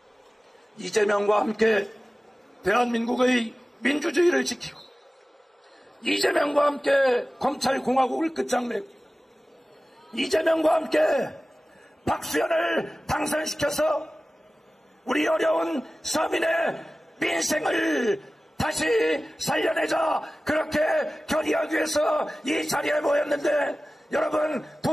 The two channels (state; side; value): normal; both; correlation 0.96